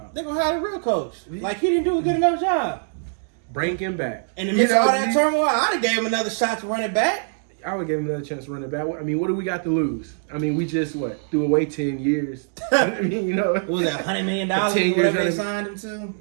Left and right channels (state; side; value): silent; left; digital silence